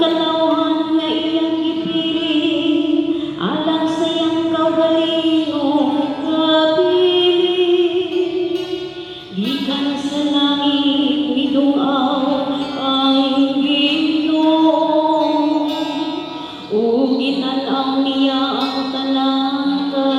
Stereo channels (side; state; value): both; identical; correlation 1.00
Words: kalauhan nga iyang gipili, alang sa iyang kaugalingong kapili. Gikan sa langit midungaw ang Ginoo, ug ginanaw niya ang tanang